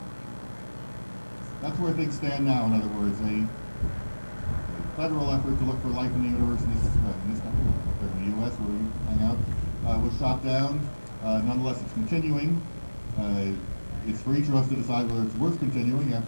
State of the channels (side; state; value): both; inverted; correlation -1.00